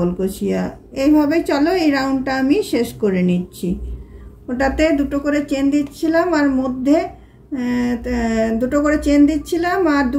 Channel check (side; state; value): both; identical; correlation 1.00